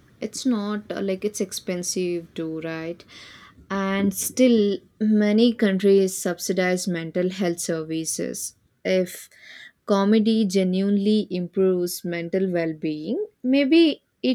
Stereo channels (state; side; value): identical; both; correlation 1.00